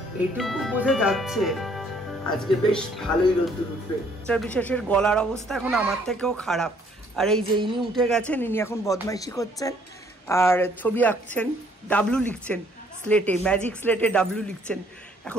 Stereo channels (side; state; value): both; normal; correlation 0.63